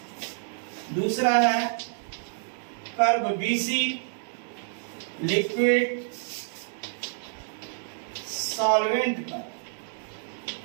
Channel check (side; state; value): left; silent; digital silence